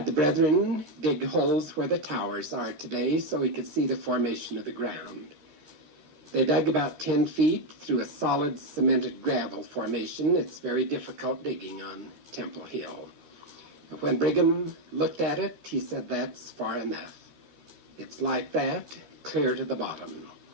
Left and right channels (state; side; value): late; left; 14 ms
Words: the brethren dig holes where the towers are today so he could see the formation of the ground. They dug about 10 feet through a solid cemented gravel formation. It's very difficult digging on Temple Hill. And when Brigham looked at it, he said, "That's far enough. It's like that, clear to the bottom."